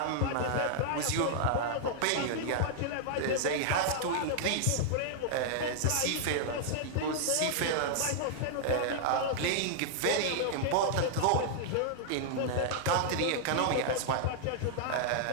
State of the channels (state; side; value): different; both; correlation -0.01